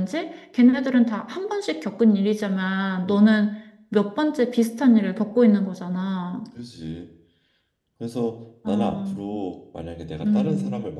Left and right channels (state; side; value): identical; both; correlation 1.00